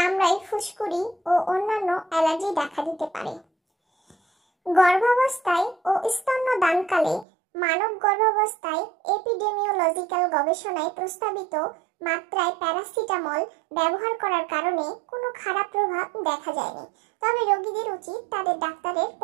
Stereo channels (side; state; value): left; drops out; at 7.2 s